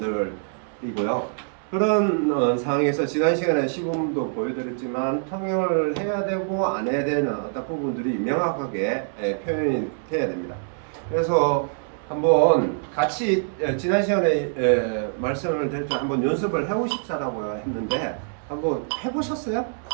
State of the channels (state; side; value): silent; left; digital silence